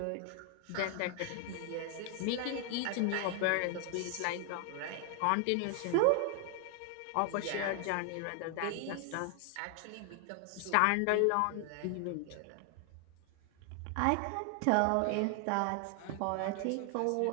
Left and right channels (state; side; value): different; both; correlation 0.00